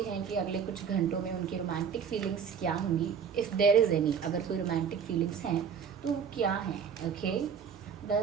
हैं कि अगले कुछ घंटों में उनकी रोमांटिक फीलिंग्स क्या होंगी, इफ़ देयर इज़ एनी। अगर कोई रोमांटिक फीलिंग्स हैं तो वो क्या हैं। Okay,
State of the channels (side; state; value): left; quieter; 7.0 dB